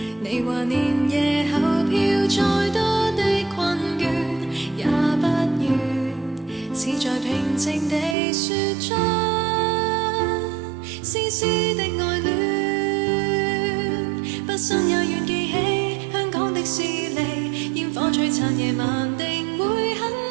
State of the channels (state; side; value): drops out; left; at 8.2 s